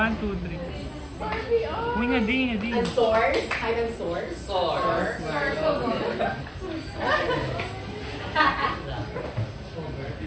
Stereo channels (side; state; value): both; identical; correlation 1.00